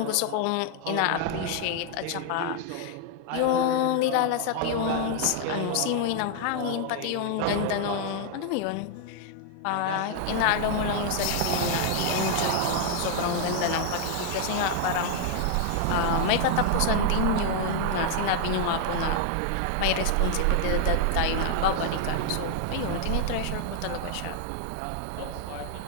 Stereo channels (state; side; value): different; both; correlation 0.00